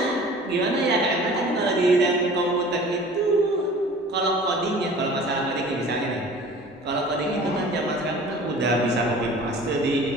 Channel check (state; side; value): normal; both; correlation 0.44